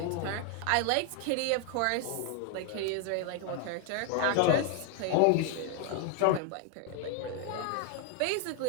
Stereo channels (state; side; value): different; both; correlation 0.01